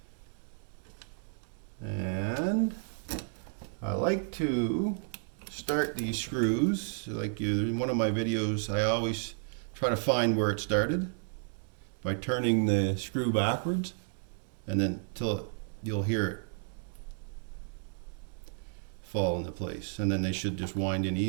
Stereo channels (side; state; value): left; silent; 56 dB below the other